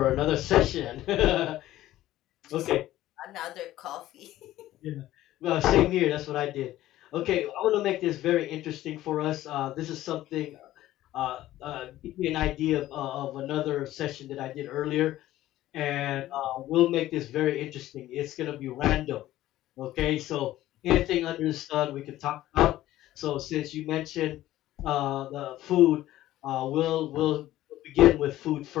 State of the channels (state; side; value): quieter; right; 14.7 dB